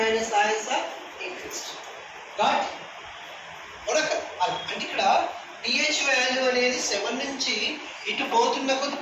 ions are increased. Got? అంటే ఇక్కడ pH value అనేది 7 నుంచి ఇటు పోతున్న కొద్ది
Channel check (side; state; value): both; identical; correlation 1.00